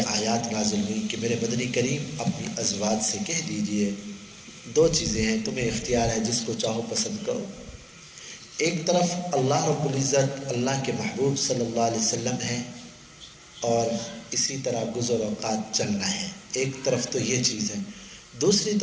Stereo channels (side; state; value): both; identical; correlation 1.00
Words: آیات نازل ہوئی کہ میرے مدنی کریم اپنی ازواج سے کہہ دیجئے 2 چیزیں ہیں، تمہیں اختیار ہے، جس کو چاہو پسند کرو۔ ایک طرف اللہ رب العزت اللہ کے محبوب صلی اللہ علیہ وسلم ہے اور اسی طرح گزر اوقات چلنا ہے، ایک طرف تو یہ چیز ہے، دوسری